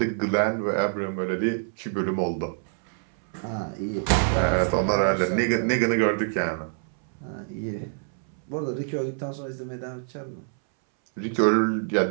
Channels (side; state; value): left; silent; 61 dB below the other